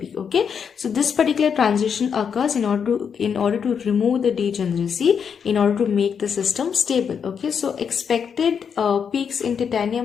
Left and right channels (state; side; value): quieter; right; 7.0 dB